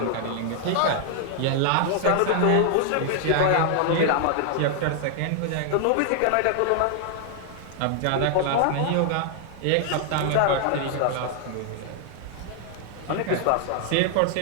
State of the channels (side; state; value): both; different; correlation 0.00